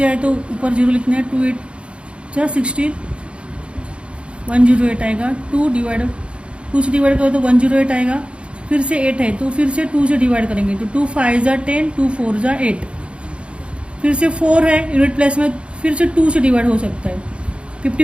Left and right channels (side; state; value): left; late; 0.058 ms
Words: आए तो ऊपर 0 लिखना है। 2 8 जा 16, 108 आएगा। 2 से डिवाइड करो तो 108 आएगा। फिर से 8 है तो फिर से 2 से डिवाइड करेंगे, तो 2 5 जा 10, 2 4 जा 8। फिर से 4 है यूनिट प्लेस में, फिर से 2 से डिवाइड हो सकता है।